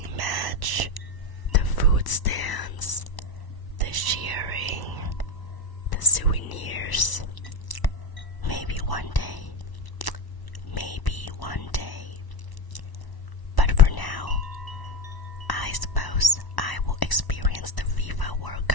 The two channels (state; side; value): late; right; 1.1 ms